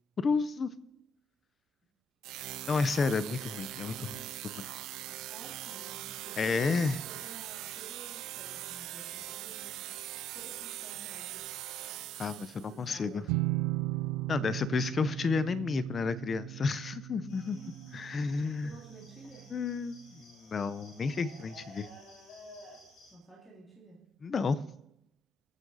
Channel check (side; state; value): both; normal; correlation 0.70